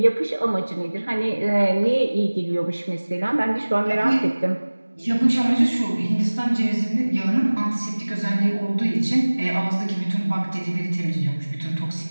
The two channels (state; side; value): inverted; both; correlation -1.00